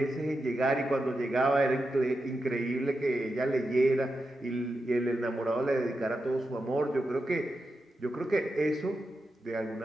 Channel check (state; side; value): normal; both; correlation 0.88